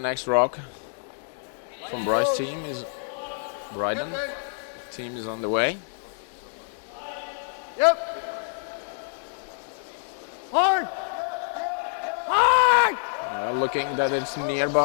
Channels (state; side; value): silent; right; digital silence